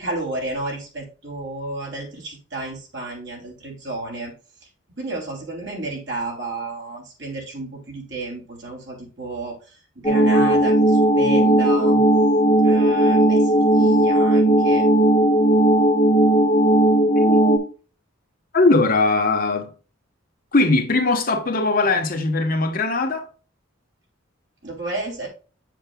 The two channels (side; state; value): both; normal; correlation 0.46